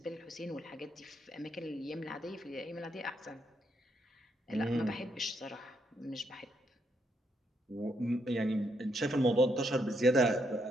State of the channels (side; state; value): both; normal; correlation 0.76